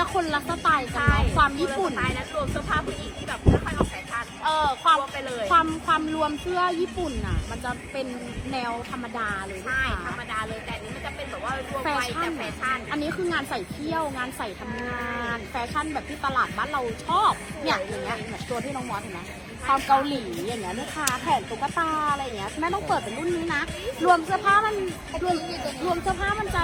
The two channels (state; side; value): identical; both; correlation 1.00